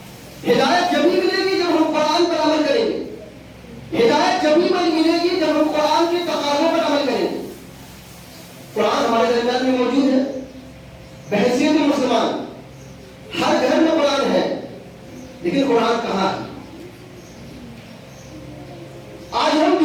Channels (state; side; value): identical; both; correlation 1.00